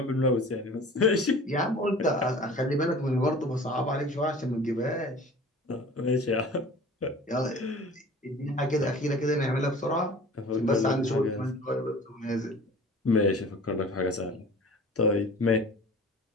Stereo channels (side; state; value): both; normal; correlation 0.43